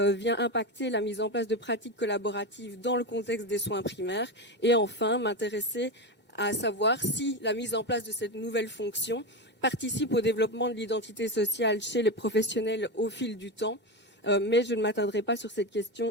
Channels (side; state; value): left; late; 2.2 ms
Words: impacter la mise en place de pratiques collaboratives dans le contexte des soins primaires ? Et enfin, m'intéresser à savoir si la mise en place de cette nouvelle fonction participe au développement de l'identité sociale chez les professionnels au fil du temps. Mais je ne m'attarderai pas sur cette